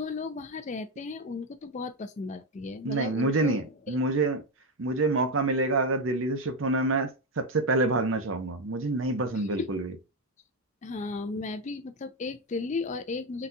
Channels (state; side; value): normal; both; correlation 0.10